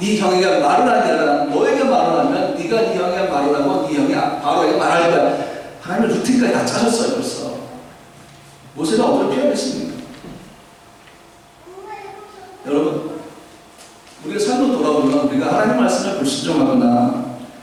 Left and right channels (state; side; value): identical; both; correlation 1.00